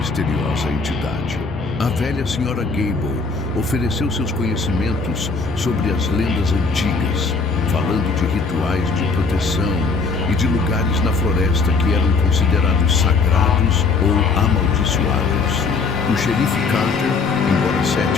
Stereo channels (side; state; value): right; quieter; 4.4 dB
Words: entidade. A velha senhora Gable ofereceu seus conhecimentos sobre as lendas antigas, falando de rituais de proteção e de lugares na floresta que eram considerados sagrados ou amaldiçoados. O xerife Carter, embora